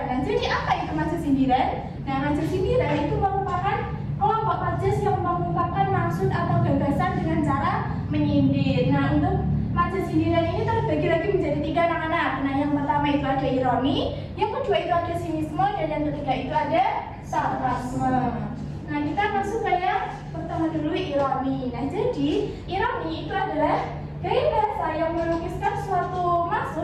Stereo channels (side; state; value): both; identical; correlation 1.00